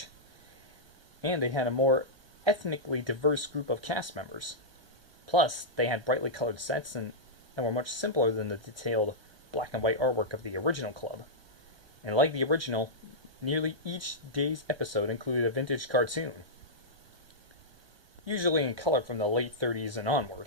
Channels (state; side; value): late; left; 1.2 ms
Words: and they had a more ethnically diverse group of cast members. Plus, they had brightly colored sets and were much simpler than the detailed black and white artwork of the original club. And like the original, nearly each day's episode included a vintage cartoon, usually in color from the late 30s and